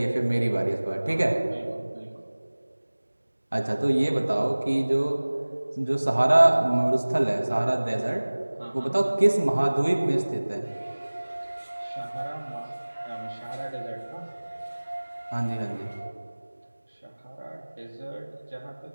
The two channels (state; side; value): inverted; both; correlation -1.00